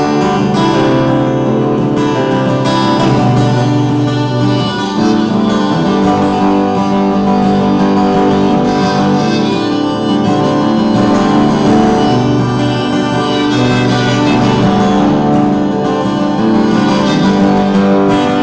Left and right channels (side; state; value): both; identical; correlation 1.00